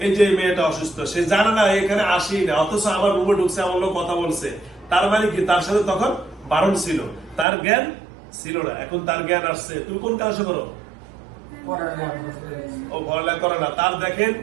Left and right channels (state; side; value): drops out; left; at 7.5 s